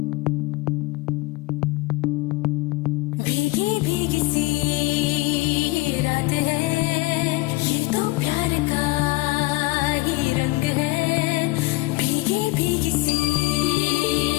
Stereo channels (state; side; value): quieter; right; 22.7 dB